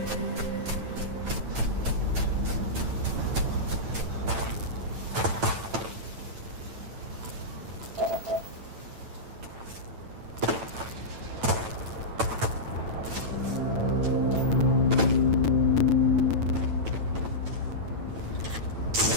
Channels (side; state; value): left; late; 9.0 ms